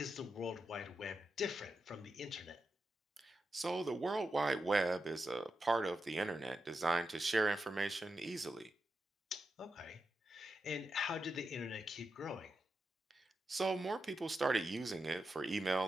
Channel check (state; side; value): normal; both; correlation 0.88